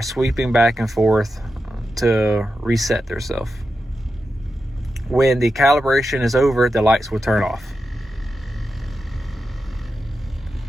sweeping back and forth to reset themselves. When the calibration is over, the lights will turn off.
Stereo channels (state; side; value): normal; both; correlation 0.89